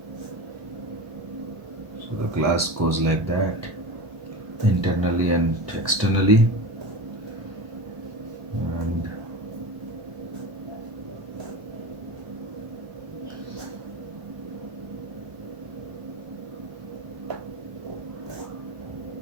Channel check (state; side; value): late; left; 1.1 ms